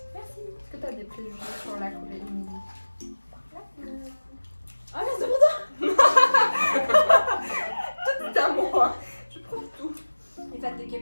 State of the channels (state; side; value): inverted; both; correlation -1.00